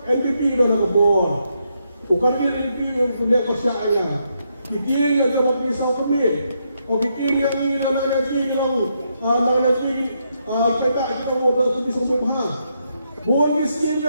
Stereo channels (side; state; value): both; inverted; correlation -0.79